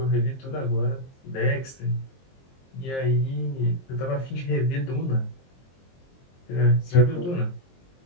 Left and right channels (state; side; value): late; right; 23 ms